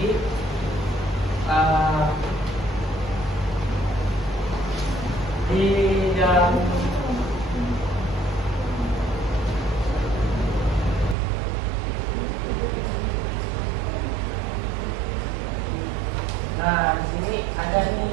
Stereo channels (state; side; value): drops out; left; at 11.2 s